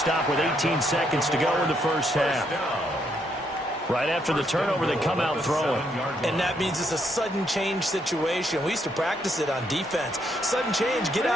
with 18 seconds to go in the first half. Right after the turnover, they come out throwing. And that means it's a sudden change situation. We used to practice it on defense. Sudden change, get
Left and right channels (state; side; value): normal; both; correlation 0.74